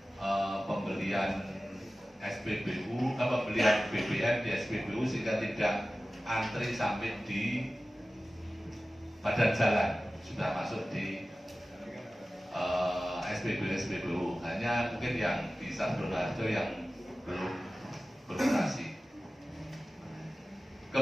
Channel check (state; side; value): normal; both; correlation 0.96